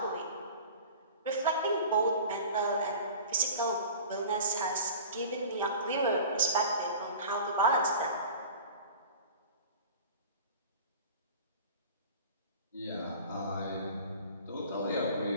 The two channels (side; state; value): both; inverted; correlation -0.39